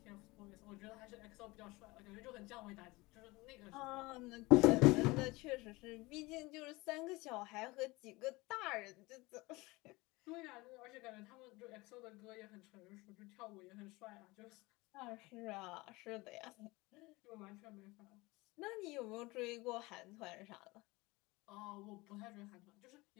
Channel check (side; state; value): right; quieter; 22.5 dB